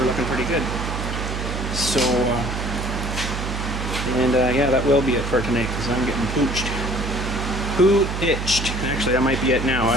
looking pretty good. So, yeah, that will be it for tonight, because I'm getting pooched. Poo-itched. Actually, that might be it now,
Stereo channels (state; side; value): noise; right; hum, 4 dB below the sound